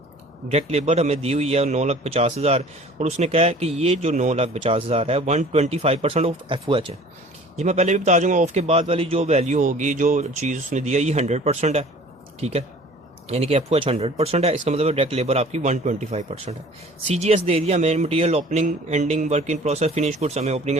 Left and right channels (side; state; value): both; normal; correlation 0.48